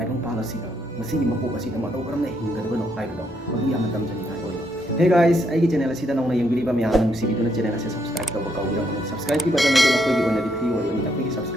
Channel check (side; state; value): both; normal; correlation 0.74